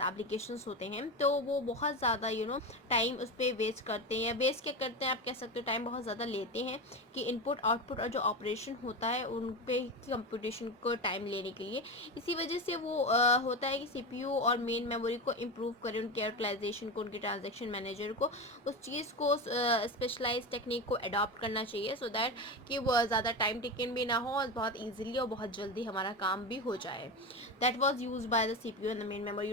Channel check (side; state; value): both; normal; correlation 0.21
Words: applications होते हैं तो वो बहुत ज़्यादा टाइम उस पर वेस्ट करते हैं, या वेस्ट क्या करते हैं आप कह सकते हो, टाइम बहुत ज़्यादा लेते हैं कि इनपुट आउटपुट और जो ऑपरेशन होता है उन पे कंप्यूटेशन को टाइम लेने के लिए. इसी वजह से वो होता है कि सीपीयू और मेन मेमोरी को इम्प्रूव करें, उनके यूटिलाइजेशन को, उनके ट्रांजेक्शन मैनेजर को उस चीज़ को स्पेशलाइज टेक्निक को अडॉप्ट करना चाहिए सो दैट कि वो ज़्यादा टाइम टेकन भी ना हो और बहुत ईजिली और बहुत जल्दी हमारा काम भी हो जाए. That was used by the CPU, and the main memory